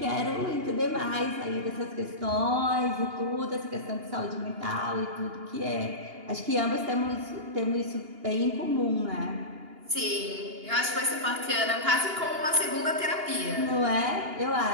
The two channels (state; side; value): late; left; 2.8 ms